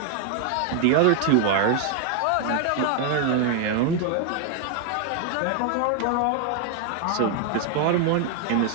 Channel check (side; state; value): both; different; correlation 0.00